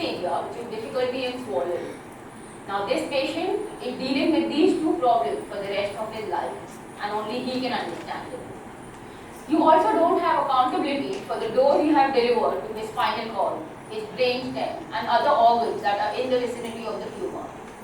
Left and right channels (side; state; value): both; identical; correlation 1.00